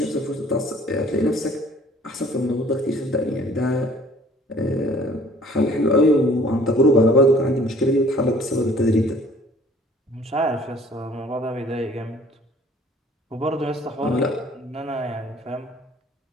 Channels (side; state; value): both; normal; correlation 0.54